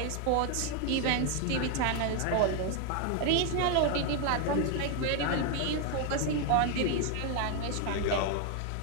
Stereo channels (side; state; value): both; different; correlation 0.01